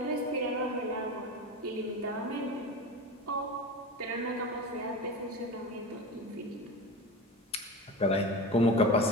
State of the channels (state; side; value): normal; both; correlation 0.28